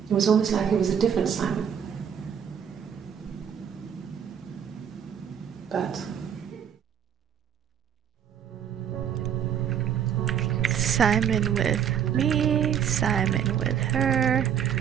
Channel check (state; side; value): quieter; left; 8.6 dB